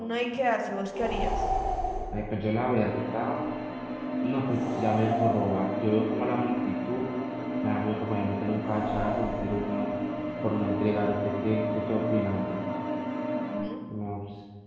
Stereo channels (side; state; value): both; identical; correlation 1.00